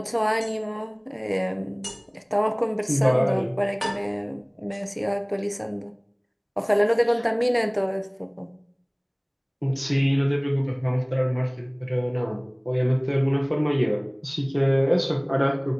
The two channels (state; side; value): identical; both; correlation 1.00